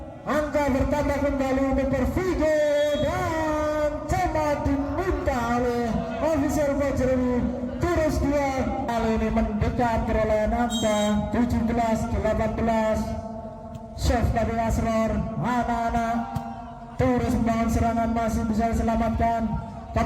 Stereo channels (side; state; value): both; identical; correlation 1.00